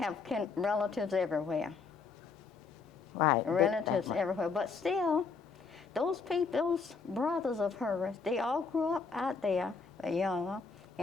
relatives everywhere. Right. Relatives everywhere. But still, those brothers of hers, they all grew up out there, younger,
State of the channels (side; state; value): right; quieter; 4.9 dB